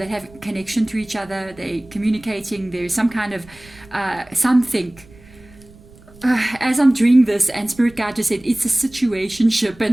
have connection to each other. They're communicating. There's some kind of something. As I'm doing this, and Spirit Guide just said it's a situationship,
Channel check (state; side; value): noise; right; rumble, 24 dB below the sound